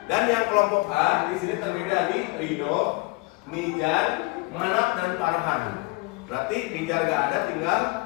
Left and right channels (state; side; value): quieter; right; 25.4 dB